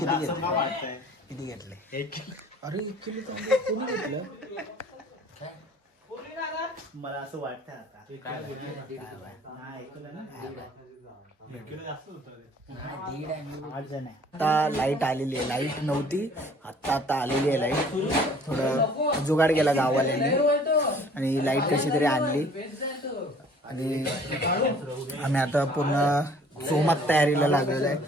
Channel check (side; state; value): both; normal; correlation 0.54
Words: घेतले? अरे 1 किलो तांदूळ कोणी घेतलं? मला असं वाटतं आता लाईट आलेली आहे. लाईट नव्हती आता आलेली आहे लाईट. थोडं जुगाड केला गाववाल्यांनी आणि लाईट कशी तरी आणली. आणि आम्ही आता पूर्ण सोमात तयारीला लागलेलो आहे.